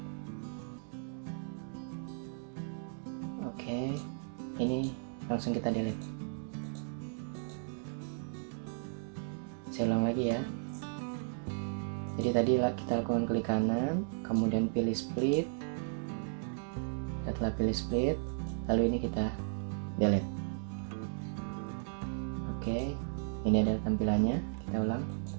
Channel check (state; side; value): silent; left; digital silence